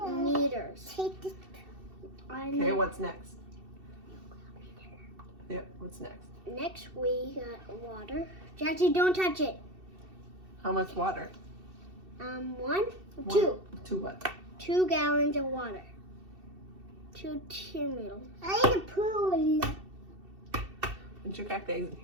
meters. Take it. Okay, what's next? Yep, what's next? Next, we got water. Jackie, don't touch it. How much water? 1, 2. 2 what? 2 gallons of water. 2 meters. I need a pool. Put your cracked eggs in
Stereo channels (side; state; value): left; late; 2.7 ms